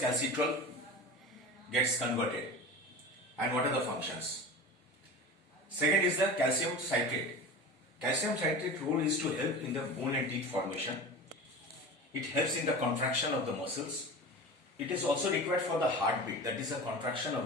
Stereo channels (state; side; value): normal; both; correlation 0.32